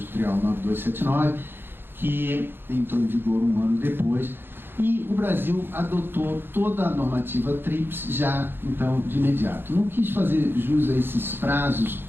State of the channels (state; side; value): late; left; 0.10 ms